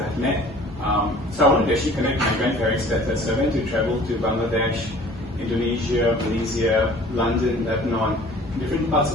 I've met. So I wanted to actually connect my grandparents better, so I went to travel to Bangladesh, Indonesia, Malaysia, London, Lebanon, different parts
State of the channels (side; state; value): both; normal; correlation 0.49